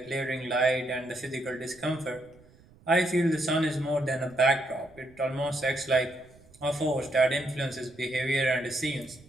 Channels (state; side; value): noise; right; rumble, 26 dB below the sound